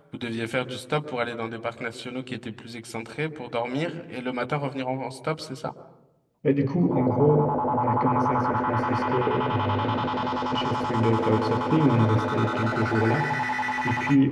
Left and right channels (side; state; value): both; identical; correlation 1.00